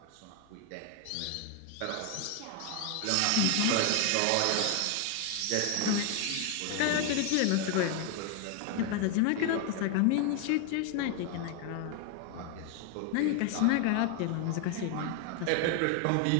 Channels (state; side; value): different; both; correlation 0.01